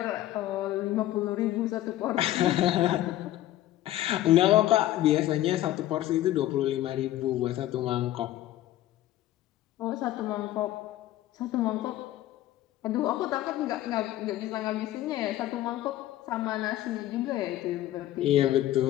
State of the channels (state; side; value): quieter; right; 14.2 dB